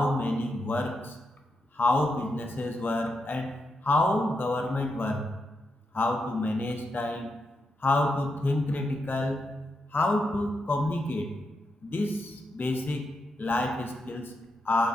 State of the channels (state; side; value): normal; both; correlation 0.84